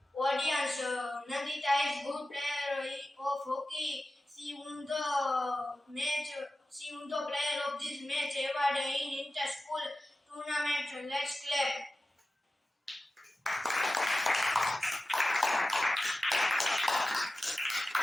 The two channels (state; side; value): normal; both; correlation 0.94